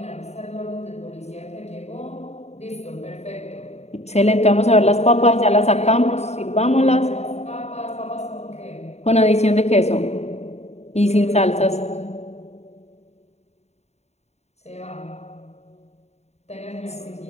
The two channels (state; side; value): late; right; 0.32 ms